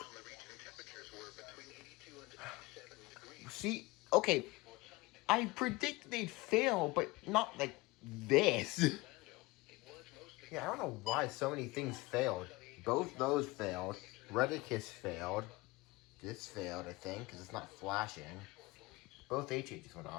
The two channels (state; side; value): quieter; right; 22.3 dB